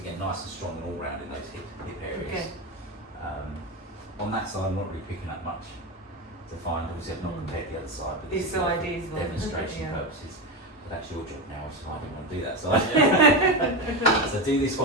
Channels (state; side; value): normal; both; correlation 0.16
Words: again, nice and strong and all round in those hip areas. Okay. On that side, I'm not really picking up much to find. Obviously, I've not Mm. compared the other side, but This is more side for is one. demonstration Yeah. purposes. But that's your job now, so I didn't want to do that side. So do this